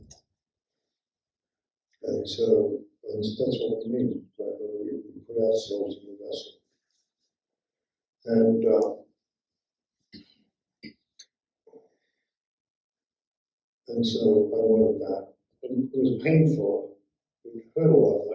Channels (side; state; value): both; identical; correlation 1.00